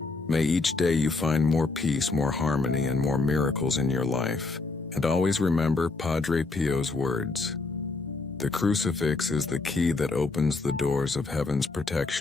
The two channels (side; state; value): right; quieter; 3.7 dB